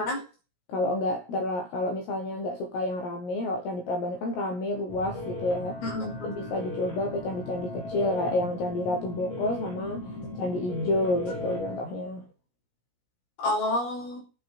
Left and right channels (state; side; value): late; right; 17 ms